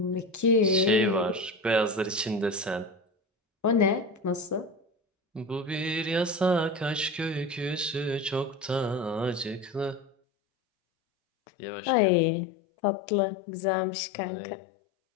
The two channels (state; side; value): drops out; right; at 10.1 s